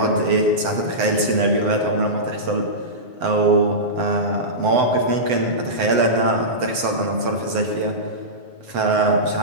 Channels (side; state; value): left; late; 7.9 ms